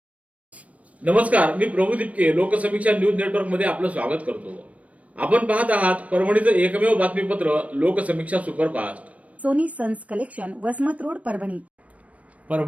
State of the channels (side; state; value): left; late; 0.066 ms